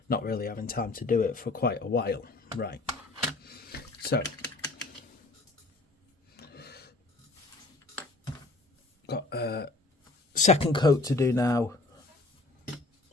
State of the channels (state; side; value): quieter; right; 3.0 dB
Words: not really having time to do it for quite a while. Right. So got a second coat to do now